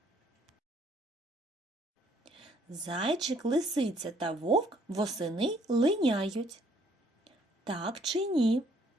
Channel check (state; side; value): normal; both; correlation 0.64